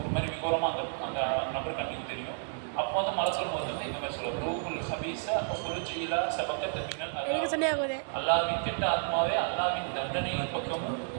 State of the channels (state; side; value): silent; left; digital silence